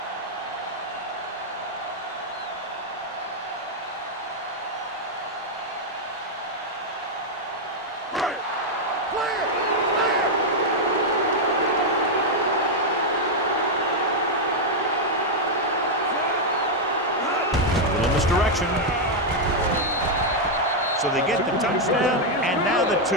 Misdirection. So they get the touchdown, and now the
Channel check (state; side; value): normal; both; correlation -0.01